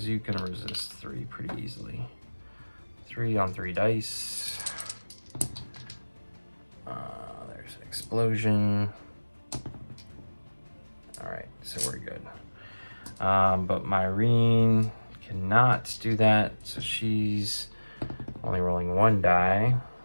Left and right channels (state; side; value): inverted; both; correlation -1.00